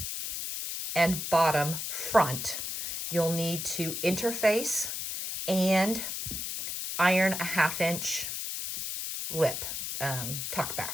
and bottom front, you'll need to interface and iron a 1/2 inch lip, tuck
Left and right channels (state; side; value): noise; left; hiss, 4 dB below the sound